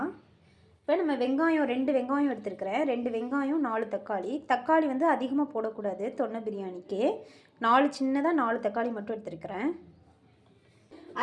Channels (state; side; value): identical; both; correlation 1.00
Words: இப்போ நம்ம வெங்காயம் 2 வெங்காயம் எடுத்துருக்கிறேன். 2 வெங்காயம் 4 தக்காளி. தக்காளி வந்து அதிகமாக போடக்கூடாது தொன்னை பிரியாணிக்கு. 4 சின்னதாக 4 தக்காளி மட்டும் எடுத்துருக்கிறேன்.